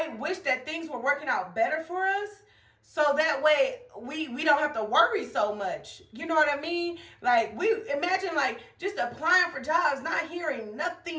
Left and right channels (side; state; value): both; identical; correlation 1.00